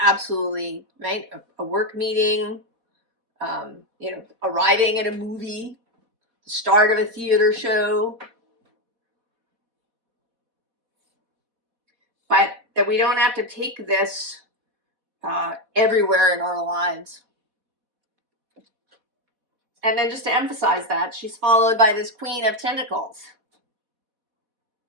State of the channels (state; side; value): late; left; 4.1 ms